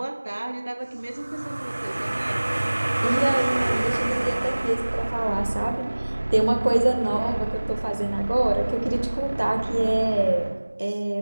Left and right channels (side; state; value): both; inverted; correlation -1.00